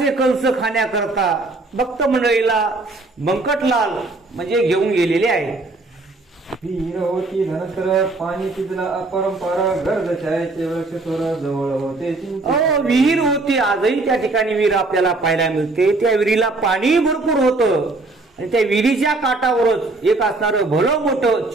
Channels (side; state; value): left; quieter; 3.3 dB